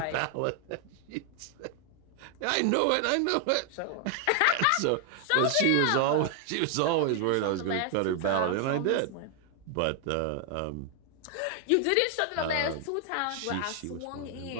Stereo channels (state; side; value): different; both; correlation 0.00